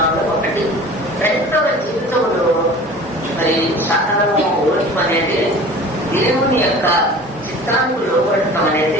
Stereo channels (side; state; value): both; normal; correlation 0.42